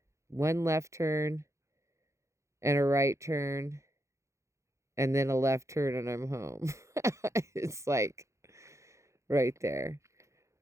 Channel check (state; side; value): late; left; 0.14 ms